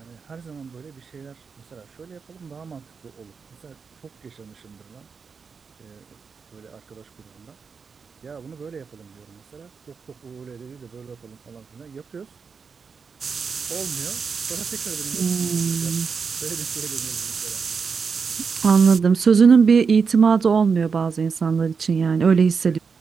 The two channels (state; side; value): quieter; left; 5.5 dB